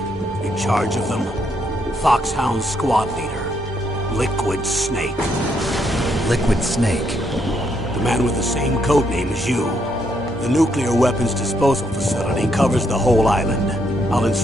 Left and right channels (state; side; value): normal; both; correlation 0.75